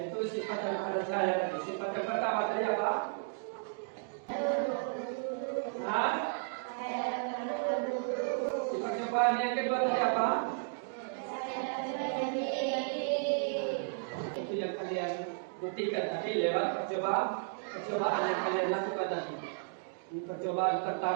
sifat daripada cahaya tadi. Sifat yang pertama tadi apa? Nah, sifat cobaan yang kedua tadi apa? Itu yang kalian buktikan tadi lewat percobaan yang kalian lakukan tadi. Percobaan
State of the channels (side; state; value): left; silent; digital silence